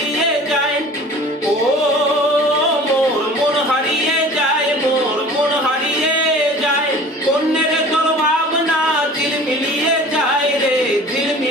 যায়। ও মোর মন হারিয়ে যায়, মোর মন হারিয়ে যায়, অন্যের তোর ভাবনা ঝিলমিলিয়ে যায় রে,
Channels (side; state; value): both; normal; correlation 0.43